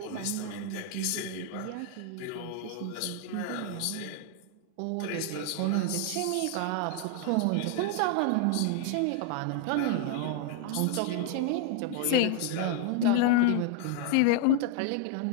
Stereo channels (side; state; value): both; different; correlation 0.00